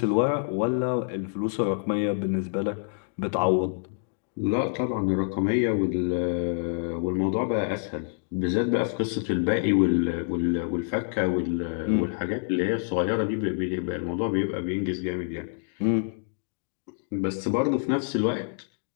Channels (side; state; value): right; silent; digital silence